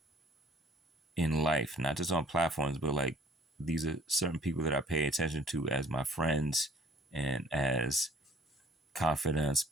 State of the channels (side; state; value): both; normal; correlation 0.55